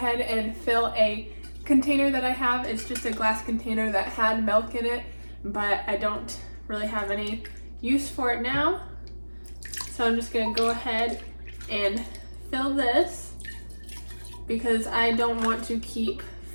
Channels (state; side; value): inverted; both; correlation -1.00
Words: and fill a container that I have. It's just a glass container that had milk in it, but I don't really have any use for it now. So I'm just going to go ahead and fill this because I don't want to keep